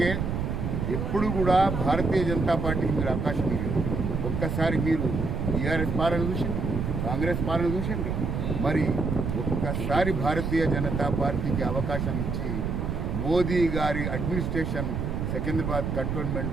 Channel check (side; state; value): right; noise; rumble, 2 dB below the sound